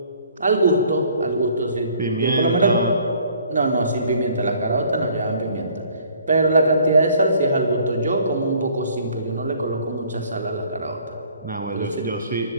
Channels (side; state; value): both; inverted; correlation -0.57